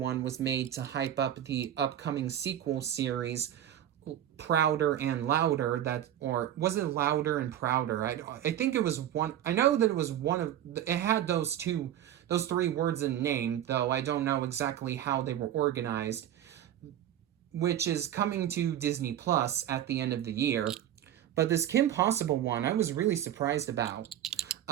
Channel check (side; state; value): left; quieter; 11.3 dB